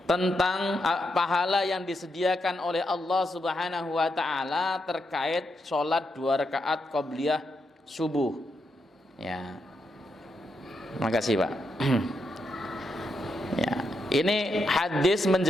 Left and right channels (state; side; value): normal; both; correlation 0.82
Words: tentang pahala yang disediakan oleh Allah Subhanahu wa taala terkait sholat 2 rakaat qabliyah subuh. Ya. Makasih, Pak. Ya. Ini hadis